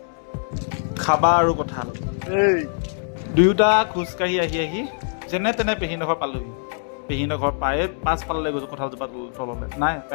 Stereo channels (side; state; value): right; silent; digital silence